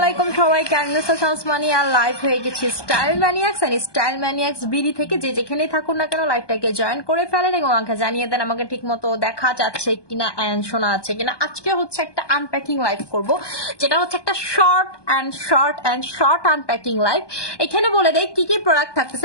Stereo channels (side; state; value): right; late; 1.2 ms